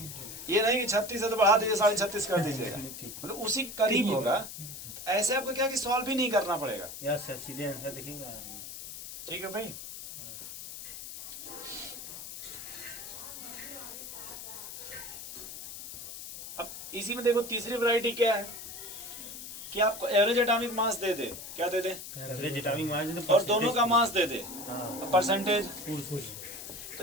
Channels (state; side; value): noise; left; hiss, 10 dB below the sound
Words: ये नहीं कि 36 है तो बढ़ा दीजिए 36.5 कर दीजिएगा, मतलब उसी के करीब होगा। ऐसे आपको क्या कि सॉल्व भी नहीं करना पड़ेगा। यस सर, सीधे आंसर देखेंगे। ठीक है भाई। अब इसी में देखो तीसरी वैरायटी क्या है कि आपको एवरेज एटॉमिक मास दे दे, क्या दे दे? एवरेज एटॉमिक मास और दोनों का मास दे दे, हाँ परसेंटेज। तो